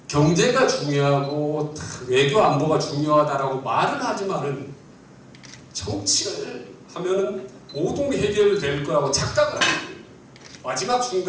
경제가 중요하고 외교 안보가 중요하다라고 말은 하지만은 정치를 하면은 모든 게 해결될 거라고 착각을 합니다. 마지막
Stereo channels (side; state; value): both; identical; correlation 1.00